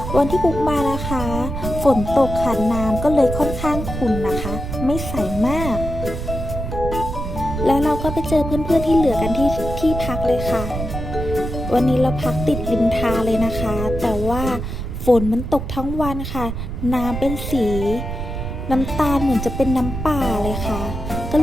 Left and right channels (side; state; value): right; noise; rumble, 5 dB below the sound